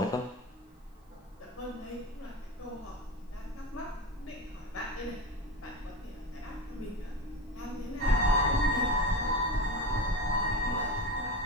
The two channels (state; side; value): normal; both; correlation 0.26